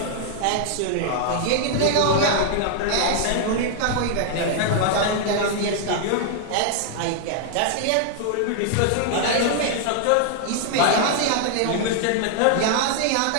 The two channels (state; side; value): different; both; correlation 0.00